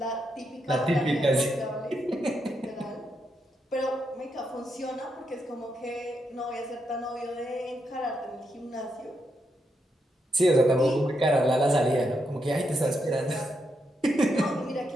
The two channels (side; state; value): both; normal; correlation 0.81